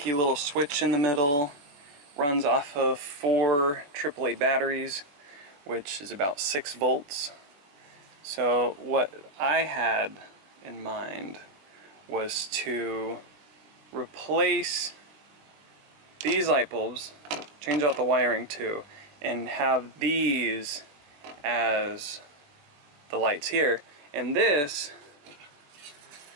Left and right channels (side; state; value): left; late; 21 ms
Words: little switch in the middle. Runs off of 4 AAA batteries, which is about 6 volts. So what I had in mind was to replace these light bulbs, change out the wiring too, and have these as the lights here. And this